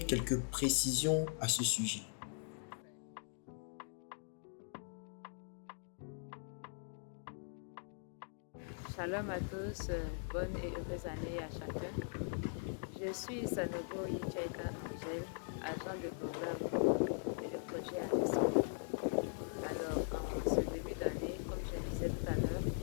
précisions à ce sujet. Shalom à tous, bonne et heureuse année à chacun. Je suis Sanogo Yichaika Angèle, agent de programme et de projet à l'ESCO. Alors, en ce début d'année, comme je disais tout à l'heure,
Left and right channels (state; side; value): silent; right; digital silence